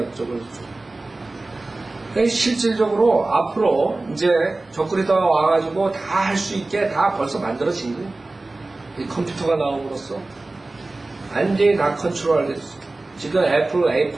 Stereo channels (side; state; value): left; quieter; 3.1 dB